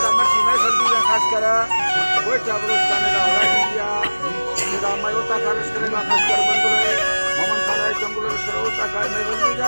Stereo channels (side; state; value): both; inverted; correlation -1.00